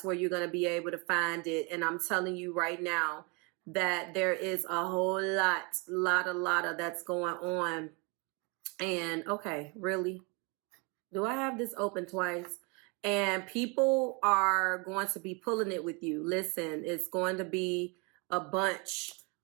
where you're going to be able to find it. And I'm telling you right now that there is a whole lot of that's going on. And okay, really? Do I have this open twice? And people are going to be pulling it with you. Listen, it's going to be a bunch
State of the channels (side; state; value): left; quieter; 31.1 dB